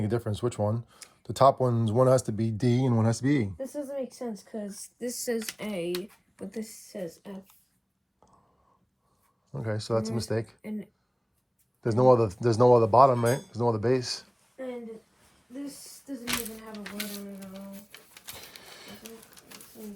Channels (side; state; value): both; identical; correlation 1.00